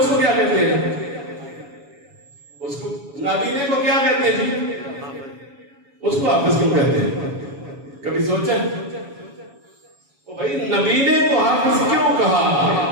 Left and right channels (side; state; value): left; late; 7.1 ms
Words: کو کیا کہتے ہیں؟ اس کو نابینے کو کیا کہتے ہیں جی؟ اس کو حافظ کیوں کہتے ہیں؟ کبھی سوچا؟ او بھائی نبینے کو حافظ کیوں کہا؟